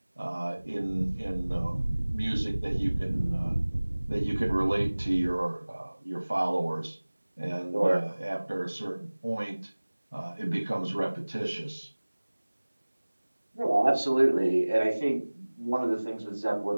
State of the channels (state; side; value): inverted; both; correlation -1.00